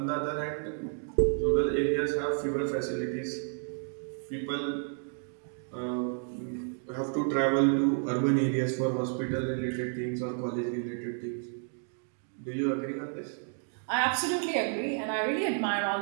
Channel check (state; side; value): silent; left; 57 dB below the other